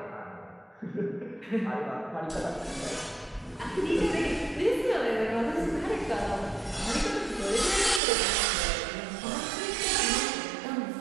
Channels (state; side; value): drops out; left; at 8.0 s